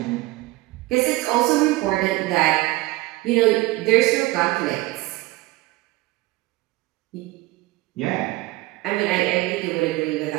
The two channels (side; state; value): left; quieter; 19.7 dB